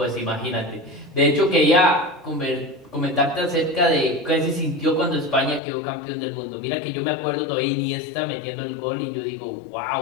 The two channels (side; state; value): right; drops out; at 5.6 s